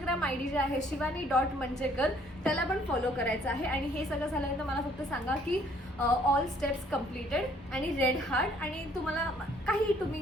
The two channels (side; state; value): both; normal; correlation 0.62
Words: ID जे आहे शिवानी.मंजेकर, त्याला पण फॉलो करायचं आहे. आणि हे सगळं झाल्यानंतर मला फक्त सांगा की ऑल स्टेप्स कम्प्लिटेड आणि रेड हार्ट, आणि तुम्हाला काही